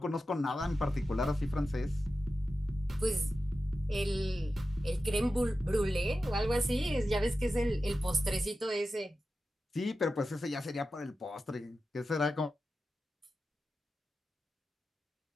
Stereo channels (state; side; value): normal; both; correlation 0.92